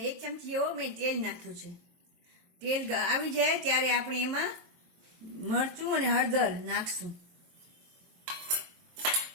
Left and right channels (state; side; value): late; left; 23 ms